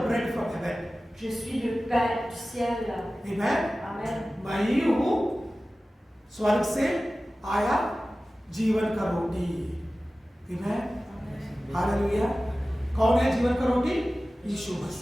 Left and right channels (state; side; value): normal; both; correlation 0.96